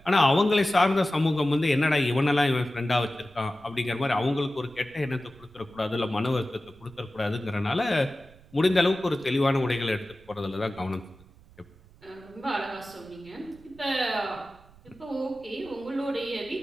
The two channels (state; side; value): noise; right; rumble, 25 dB below the sound